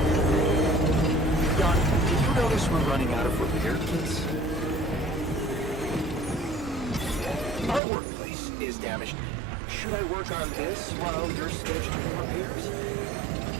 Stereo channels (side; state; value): left; drops out; at 7.8 s